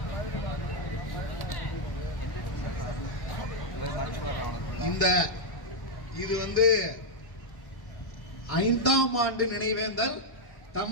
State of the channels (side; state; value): right; late; 1.1 ms